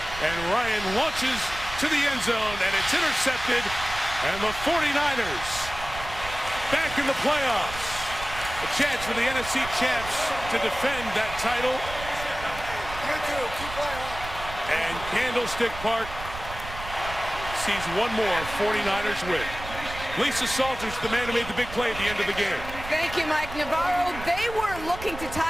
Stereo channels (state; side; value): noise; right; rumble, 11 dB below the sound